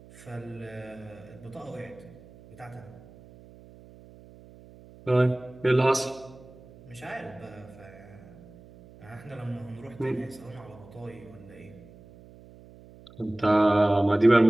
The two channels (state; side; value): noise; right; hum, 21 dB below the sound